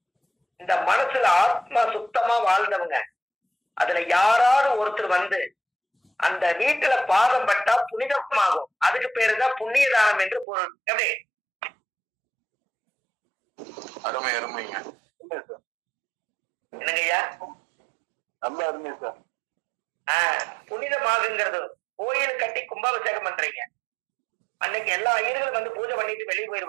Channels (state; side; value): drops out; left; at 10.5 s